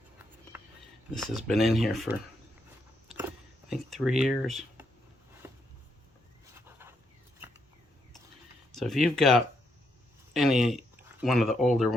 This has been in here for, I think, 3 years. So if you've got any one of the older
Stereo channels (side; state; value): both; normal; correlation 0.78